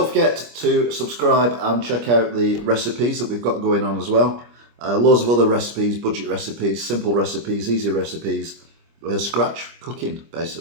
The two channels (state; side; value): late; left; 25 ms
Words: forget to subscribe and check out the recipes that we've got going on as well. Loads of other recipes, budget recipes, simple recipes, easy recipes, scratch cooking